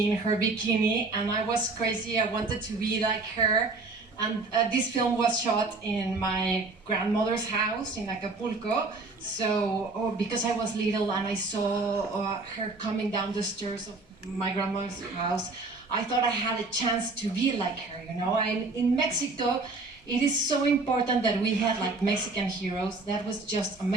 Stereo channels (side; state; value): left; quieter; 3.6 dB